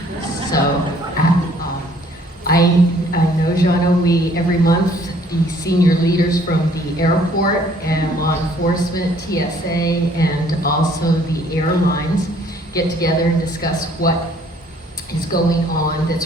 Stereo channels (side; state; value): both; normal; correlation 0.60